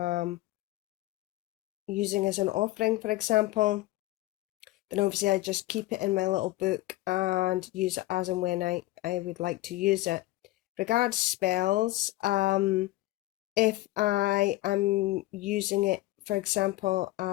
using as an offering, for example, then obviously I just keep it in my little book and use it as and when I would like to use it. Regards spells, if I am using it, for example,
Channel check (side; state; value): right; quieter; 17.8 dB